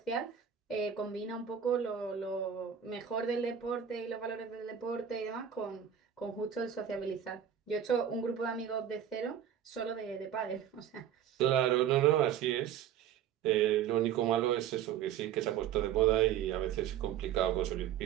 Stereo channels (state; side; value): quieter; left; 9.2 dB